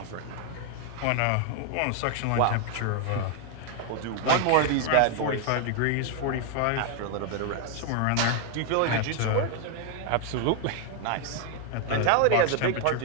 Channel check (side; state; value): both; different; correlation 0.00